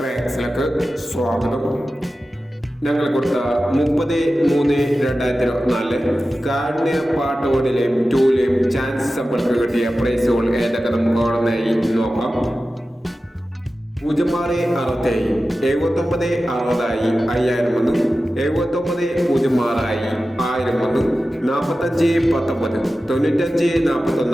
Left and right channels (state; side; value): normal; both; correlation 0.94